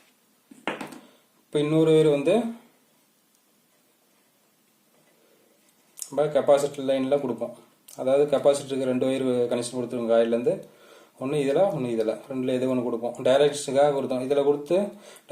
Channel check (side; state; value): both; identical; correlation 1.00